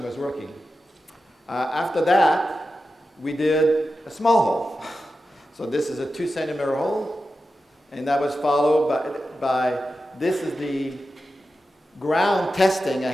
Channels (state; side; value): normal; both; correlation 0.91